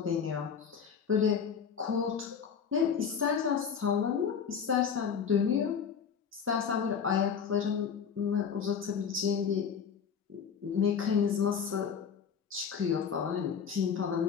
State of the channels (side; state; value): right; quieter; 6.9 dB